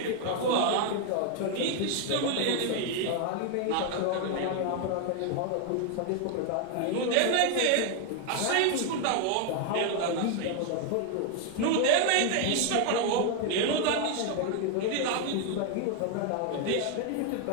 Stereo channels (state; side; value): different; both; correlation 0.00